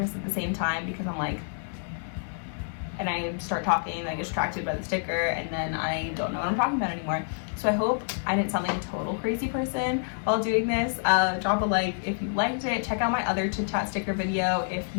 at the same time, because I'm like, and I start talking and I get distracted by the sticker and then I don't know what I'm talking about anymore. So I hope I didn't sound like a total crazy person while doing this. Drop a like if you liked it. Check out my other chit chat sticker video if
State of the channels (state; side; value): silent; right; digital silence